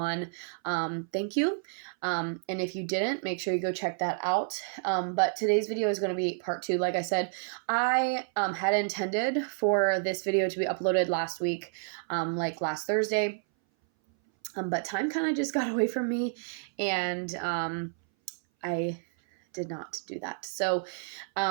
thank you. And if you didn't, make sure you go check that out. But today's video is going to be part 2. Like I said, I had intended for this video to be uploaded last week, like last Thursday. But time kind of just got away from me, and I did not do that. So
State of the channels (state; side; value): silent; left; 58 dB below the other